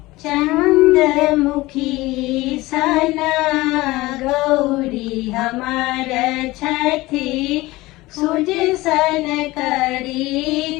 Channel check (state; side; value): quieter; right; 19.7 dB